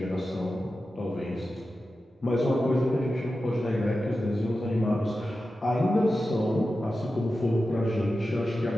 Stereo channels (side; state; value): both; normal; correlation 0.92